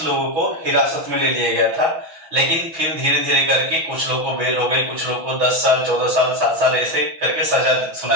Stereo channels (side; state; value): left; late; 6.1 ms